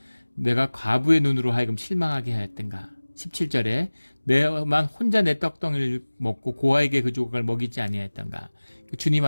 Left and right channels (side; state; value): both; inverted; correlation -1.00